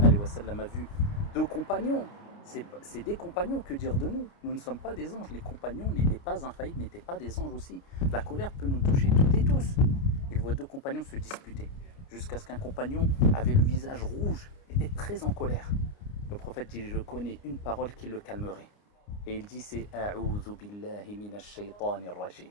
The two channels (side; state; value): right; late; 29 ms